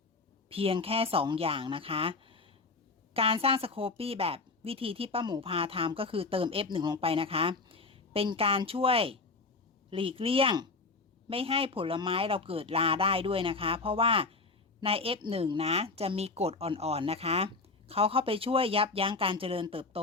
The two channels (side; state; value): right; quieter; 3.8 dB